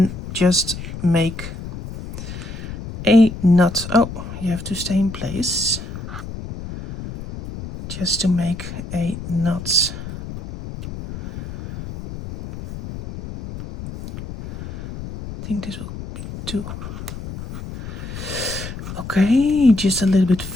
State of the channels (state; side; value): noise; left; rumble, 10 dB below the sound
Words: just make a knot. Oh, you have to stay in place. Just to make a knot. I think this will be too. Okay, just a little bit